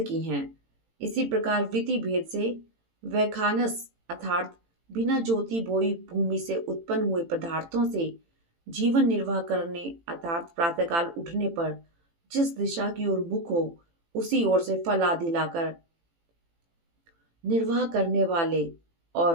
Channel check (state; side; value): late; left; 18 ms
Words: की हैं। इसी प्रकार वृत्ति भेद से वैखानस अर्थात बिना ज्योति बोई भूमि से उत्पन्न हुए पदार्थों से जीवन निर्वाह करने अर्थात प्रातःकाल उठने पर जिस दिशा की ओर मुख हो उसी ओर से फल आदि लाकर निर्वाह करने वाले,